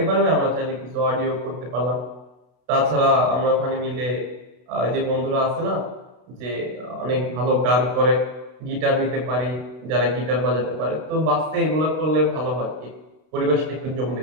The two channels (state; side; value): late; left; 32 ms